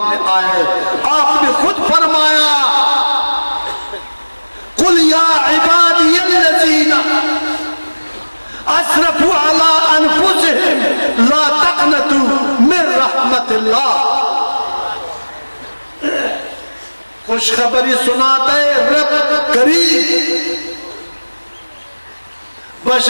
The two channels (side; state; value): both; inverted; correlation -1.00